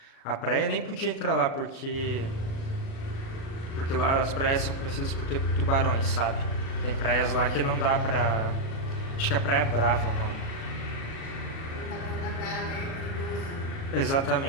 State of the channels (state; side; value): late; right; 37 ms